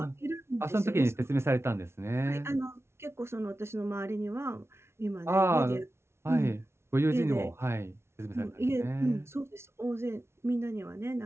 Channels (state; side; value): late; left; 0.12 ms